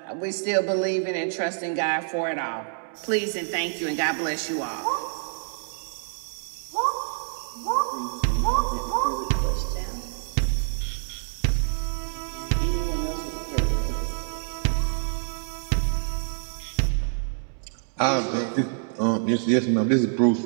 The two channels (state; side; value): silent; left; digital silence